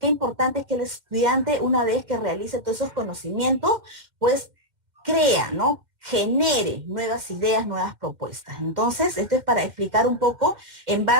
importante es que el estudiante, una vez que realice todos esos conocimientos, pues crea, ¿no? Genere nuevas ideas, nuevas propuestas. Entonces, esto es para explicar un poco en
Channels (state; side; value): late; left; 2.1 ms